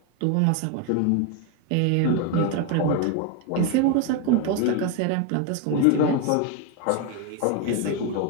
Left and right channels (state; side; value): different; both; correlation 0.01